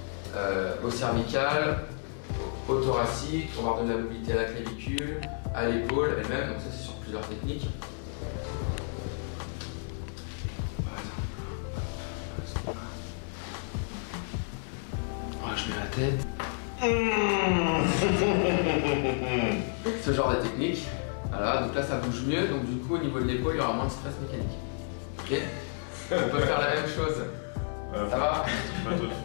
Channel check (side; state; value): right; silent; 57 dB below the other